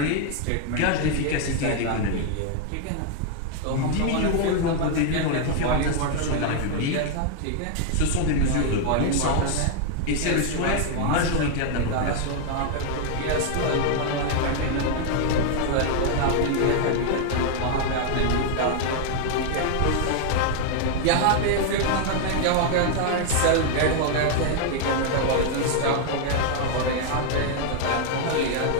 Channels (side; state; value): both; different; correlation 0.00